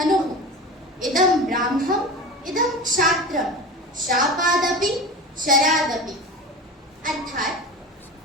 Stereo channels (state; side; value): normal; both; correlation 0.31